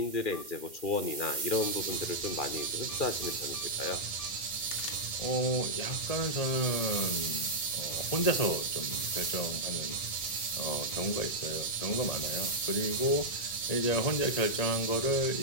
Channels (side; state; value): right; late; 2.1 ms